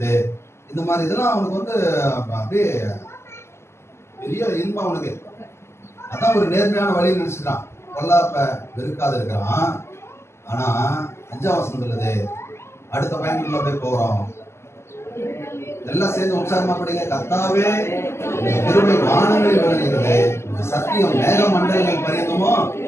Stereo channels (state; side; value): late; right; 0.13 ms